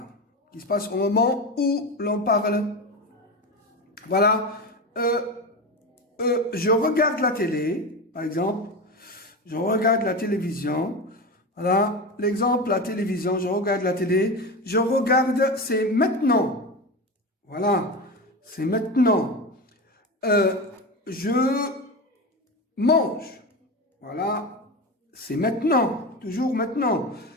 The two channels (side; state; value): both; normal; correlation 0.22